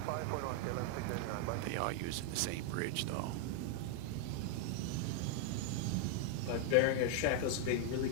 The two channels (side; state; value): both; different; correlation 0.00